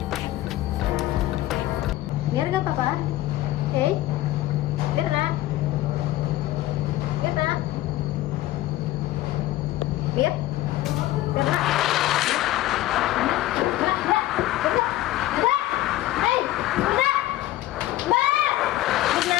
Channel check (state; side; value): quieter; right; 15.6 dB